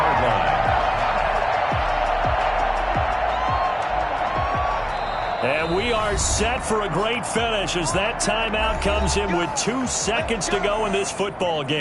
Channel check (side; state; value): both; identical; correlation 1.00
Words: line. And we are set for a great finish as that timeout comes in with 2 seconds to go in this football